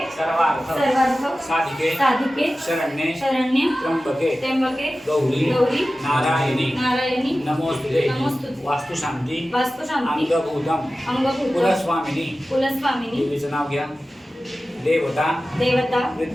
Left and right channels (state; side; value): normal; both; correlation 0.95